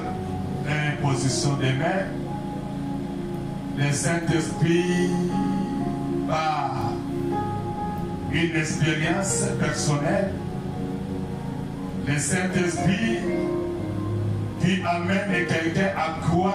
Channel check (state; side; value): identical; both; correlation 1.00